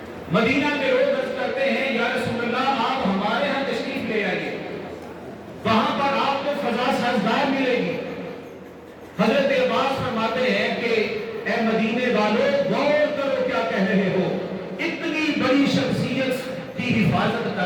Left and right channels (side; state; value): both; identical; correlation 1.00